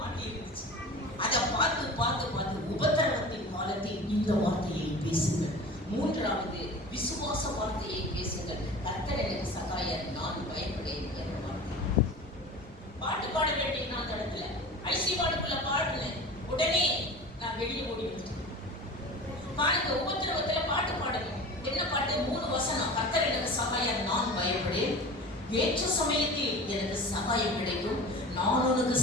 இருந்துச்சு. அதை பார்த்து பார்த்து பார்த்து உபத்திரவத்தின் காலத்தில் இந்த வார்த்தையை பேசுங்கள். மூன்றாவது விசுவாச வார்த்தையை பேசுங்கள். கர்த்தர் எனக்கு சகாயர், நான் பயப்படேன் என்ற வார்த்தை. பாட்டு பாட வேண்டிய நான் இடத்துல ஐசி வார்டுக்குள்ள பாடுனேன். உடனே நான் வெளியே ஓடி வந்துட்டேன். பாருங்க, உபத்திரவத்துல பாட்டு பாடணும். என்ன பாட்டு? 3 வசனம். கர்த்தர் எனக்கு சகாயர், நான் பயப்படேன். ஏற்ற சமயத்தில் எனக்கு சகாயம் கிடைக்கும், நான் உனக்கு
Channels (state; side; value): normal; both; correlation 0.36